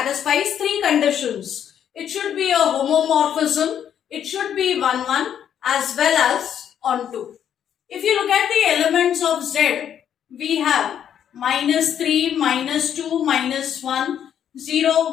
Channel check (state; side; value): quieter; right; 9.3 dB